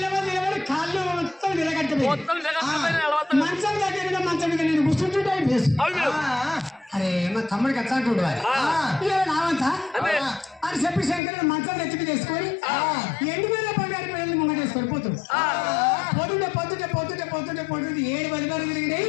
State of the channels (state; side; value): drops out; right; at 11.2 s